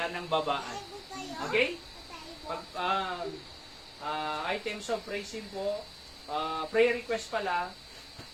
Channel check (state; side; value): identical; both; correlation 1.00